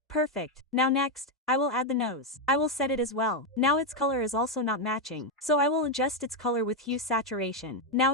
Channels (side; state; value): both; normal; correlation 0.04